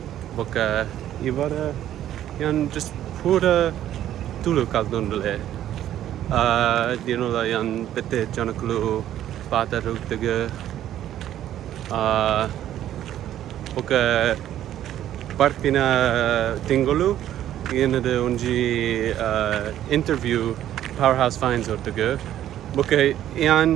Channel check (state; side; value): quieter; left; 11.9 dB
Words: bokka ivara yan just pura tulu kaldundule dinola yan bete janakulu pata ruktige bokka partina tingolu yenade onji interview Powerhouse Finds ortugu bokka yan